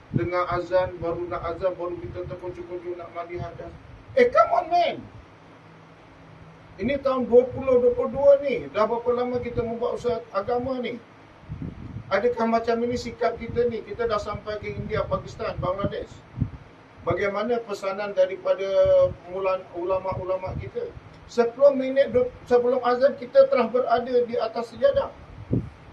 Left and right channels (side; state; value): both; identical; correlation 1.00